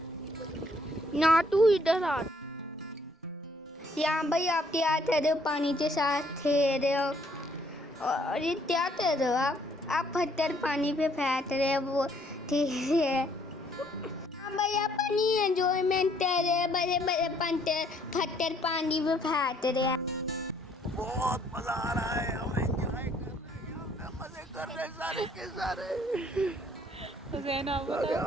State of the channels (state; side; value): normal; both; correlation 0.65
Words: ना, तू इधर आ। यहाँ भाई आप क्या कर रहे हो? पानी के साथ खेल रहे हो, और ये क्या कर रहे हो आप पत्थर पानी पे फेंक रहे हो, वो ठीक है। हाँ भाई आप पानी एंजॉयमेंट कर रहे हैं, बड़े बड़े पत्थर पानी पे फेंक रहे हैं। बहुत मजा आ रहा है और एंजॉय कर रहे हैं सारे के सारे।